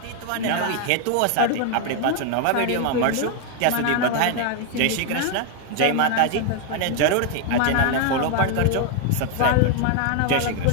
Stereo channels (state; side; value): different; both; correlation 0.00